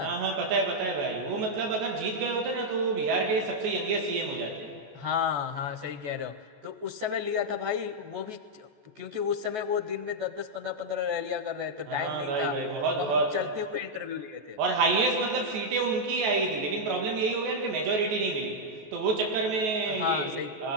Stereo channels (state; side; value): late; left; 14 ms